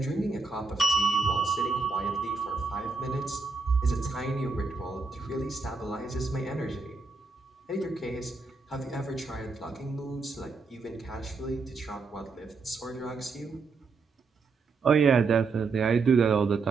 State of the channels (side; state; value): left; quieter; 4.3 dB